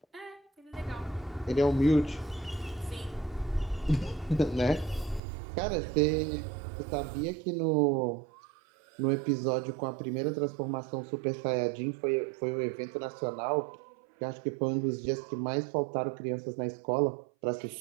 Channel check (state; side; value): drops out; left; at 5.2 s